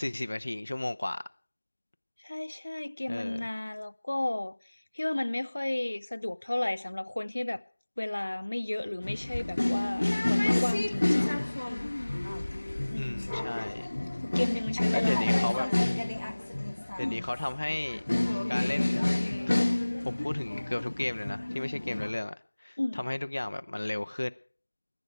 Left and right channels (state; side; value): inverted; both; correlation -1.00